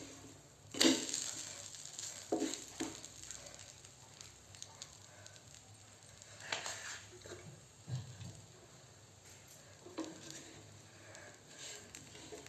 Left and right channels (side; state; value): both; identical; correlation 1.00